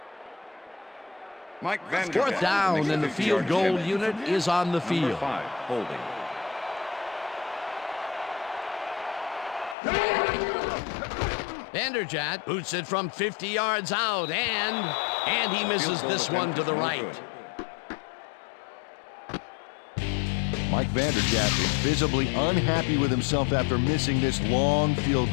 Mike Vanderjagt Fourth down, makes and the 50 field yard goal catch. unit is on the Number field. 5, holding. Vanderjagt boots it from 50 yards out, and he misses this one to the right. Mike Vanderjagt is visibly unhappy with himself after missing this long field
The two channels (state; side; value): drops out; right; at 9.8 s